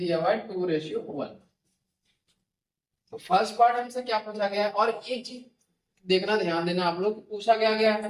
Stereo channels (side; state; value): both; identical; correlation 1.00